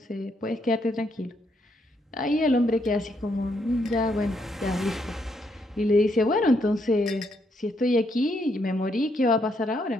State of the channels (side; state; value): both; normal; correlation 0.75